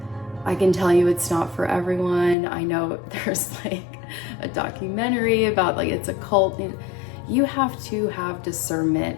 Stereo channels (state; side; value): drops out; right; at 2.4 s